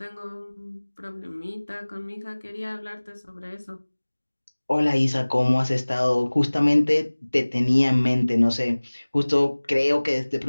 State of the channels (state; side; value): inverted; both; correlation -1.00